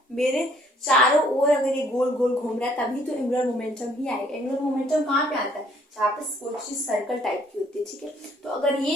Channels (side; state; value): both; normal; correlation 0.63